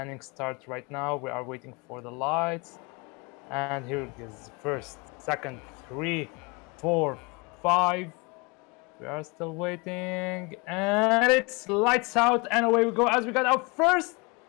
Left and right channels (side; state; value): right; quieter; 28.5 dB